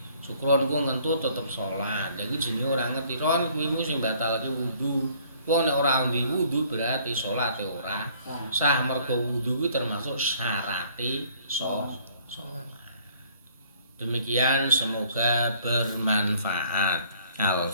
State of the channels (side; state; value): both; inverted; correlation -0.58